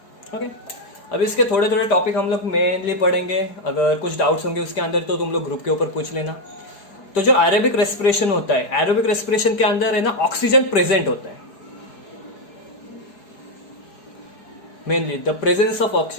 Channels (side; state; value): right; late; 4.7 ms